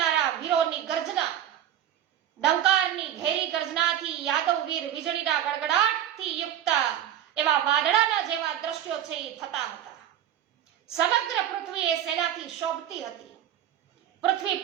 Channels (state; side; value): quieter; left; 11.1 dB